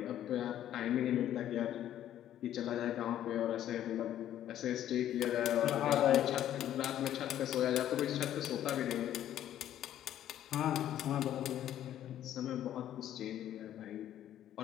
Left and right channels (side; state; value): right; quieter; 11.6 dB